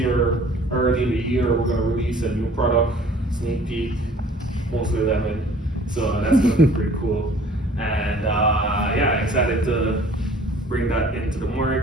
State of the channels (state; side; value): normal; both; correlation 0.52